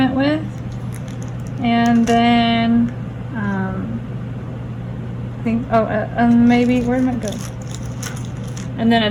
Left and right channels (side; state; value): both; identical; correlation 1.00